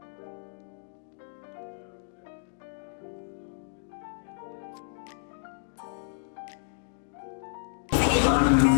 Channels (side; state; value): right; silent; digital silence